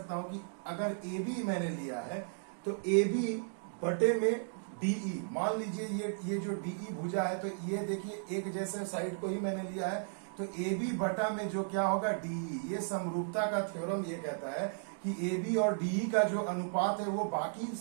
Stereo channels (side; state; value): left; silent; digital silence